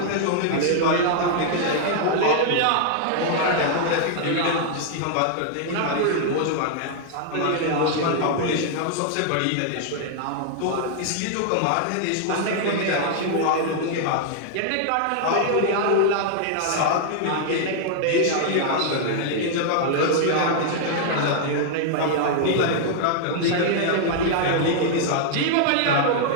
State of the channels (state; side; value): different; both; correlation -0.01